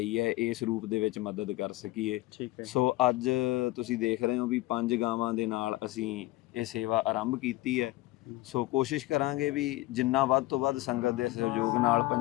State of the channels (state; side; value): quieter; right; 18.1 dB